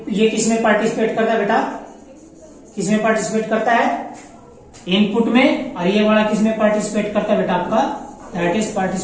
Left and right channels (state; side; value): identical; both; correlation 1.00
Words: किसमें पार्टिसिपेट करता है बेटा, किसमें पार्टिसिपेट करता है, इनपुट में, और ये वाला किसमें पार्टिसिपेट करता है बेटा आपका, that is